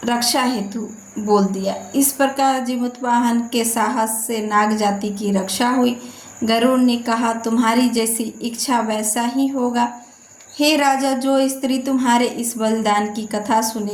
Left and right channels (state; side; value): identical; both; correlation 1.00